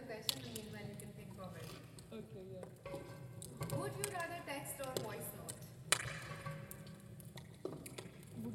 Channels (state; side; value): identical; both; correlation 1.00